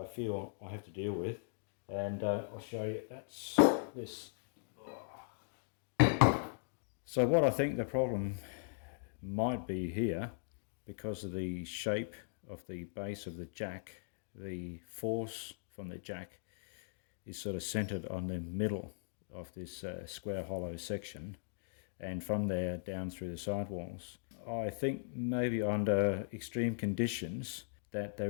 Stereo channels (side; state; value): right; silent; digital silence